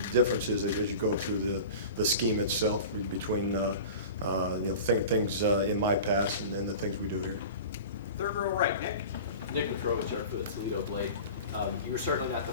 differences as you go through the scheme itself between things in my past and then the things we do here. Third row right, Nick. Nick Petrovich for the Toledo Blade. You were certainly not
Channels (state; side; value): inverted; both; correlation -0.36